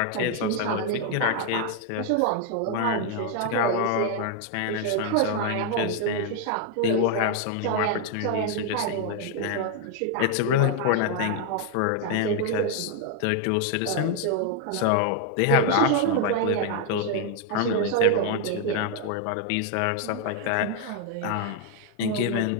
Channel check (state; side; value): different; both; correlation 0.00